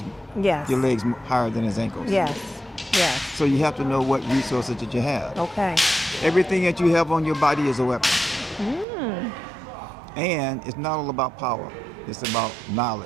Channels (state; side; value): drops out; left; at 8.8 s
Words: Yes. your legs higher than his ankles. Yes. Yes. So you have to know what resources that you have. Okay. Everything that you have on your body is a weapon. And it's not all about power. It's about